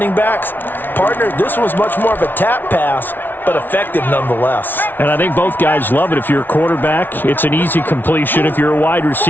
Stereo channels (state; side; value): late; right; 0.093 ms